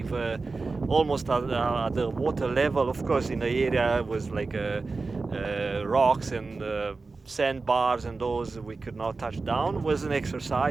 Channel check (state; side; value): quieter; left; 3.9 dB